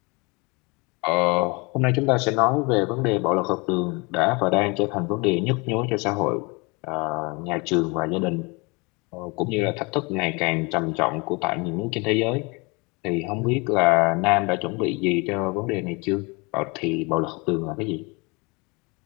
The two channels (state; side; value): quieter; right; 28.2 dB